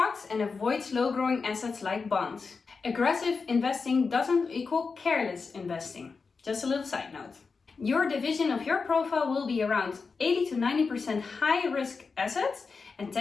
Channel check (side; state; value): right; quieter; 4.8 dB